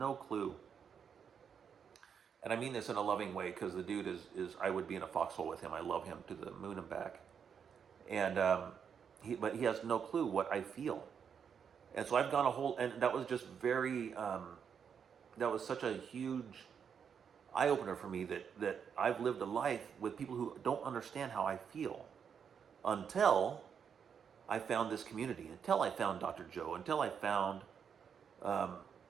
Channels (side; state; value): left; quieter; 7.2 dB